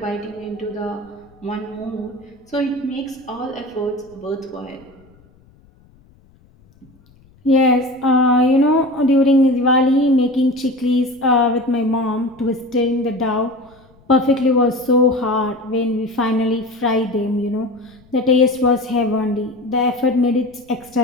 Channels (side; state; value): left; noise; rumble, 29 dB below the sound